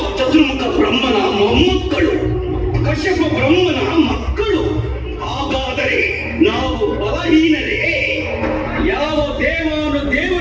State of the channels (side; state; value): both; identical; correlation 1.00